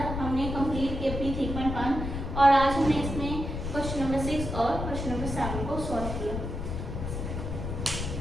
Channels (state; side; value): noise; left; rumble, 4 dB below the sound